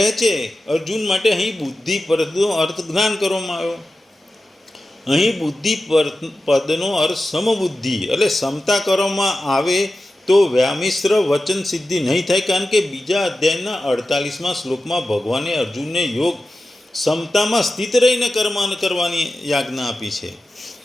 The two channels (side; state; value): both; normal; correlation 0.93